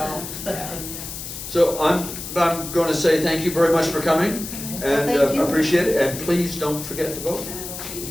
yeah. So I'm going to say thank you very much for coming, and Thank you. appreciate it, and please don't forget to vote.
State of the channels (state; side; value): noise; left; hiss, 9 dB below the sound